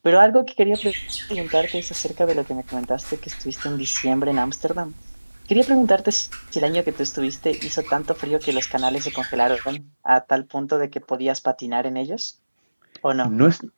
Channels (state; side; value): inverted; both; correlation -1.00